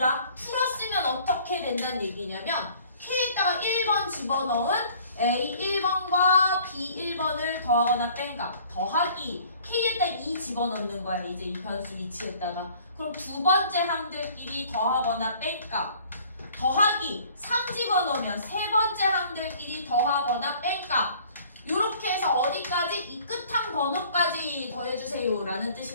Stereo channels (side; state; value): both; inverted; correlation -0.53